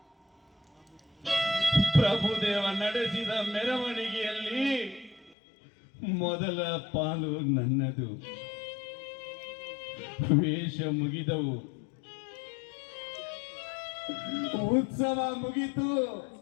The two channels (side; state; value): right; drops out; at 5.4 s